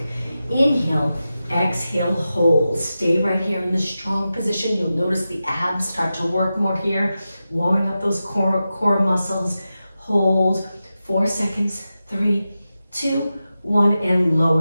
Inhale, exhale, hold. Stay right here in this strong position. You'll notice the abs start to work more here, warming up those core muscles. Hold, 4 seconds, 3, 2, 1, and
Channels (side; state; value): both; inverted; correlation -0.92